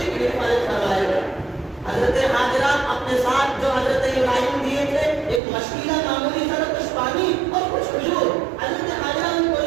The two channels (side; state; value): left; drops out; at 5.4 s